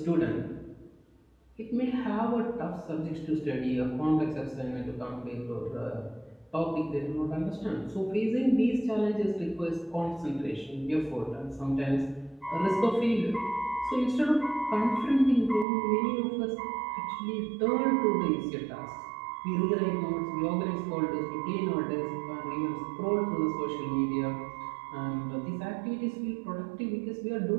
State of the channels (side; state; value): left; drops out; at 15.7 s